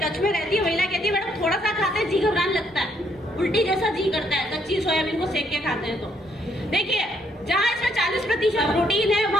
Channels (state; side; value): normal; both; correlation 0.71